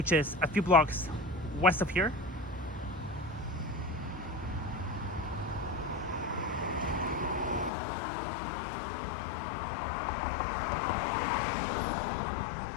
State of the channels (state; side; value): drops out; right; at 7.7 s